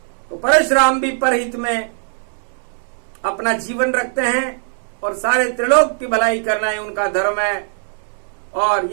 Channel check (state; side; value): silent; left; 66 dB below the other